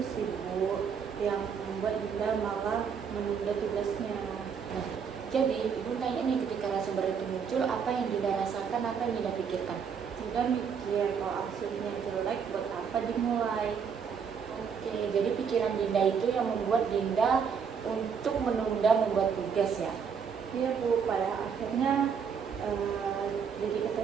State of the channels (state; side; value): quieter; left; 6.6 dB